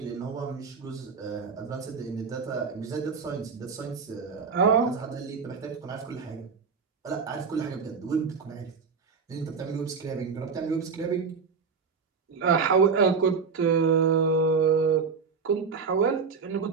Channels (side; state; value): left; quieter; 5.5 dB